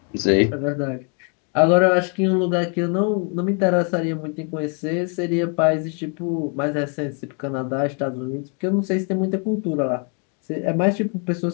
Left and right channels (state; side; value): quieter; right; 39.8 dB